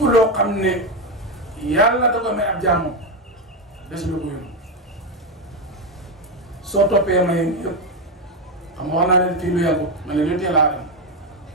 loo xam ne yàlla da ko may ab jàmm des la ko yónni soo toppee ma yéen yëpp xam nga wax naa leen fii lu yàggut ma ne lu teel a dem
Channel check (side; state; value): both; normal; correlation 0.10